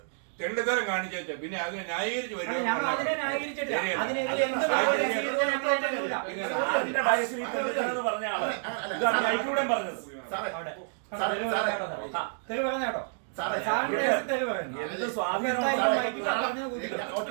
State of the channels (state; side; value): silent; left; digital silence